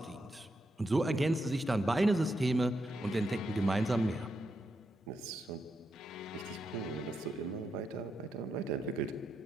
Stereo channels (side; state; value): both; normal; correlation 0.83